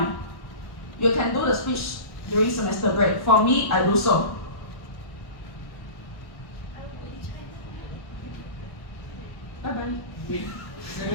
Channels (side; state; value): right; late; 1.1 ms